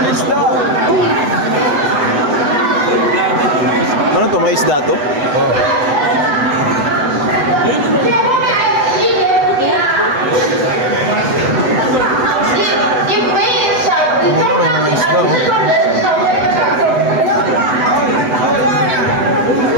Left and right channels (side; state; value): left; late; 8.0 ms